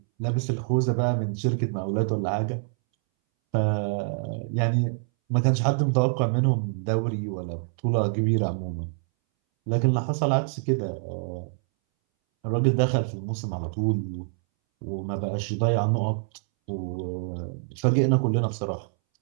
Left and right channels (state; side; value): silent; left; 61 dB below the other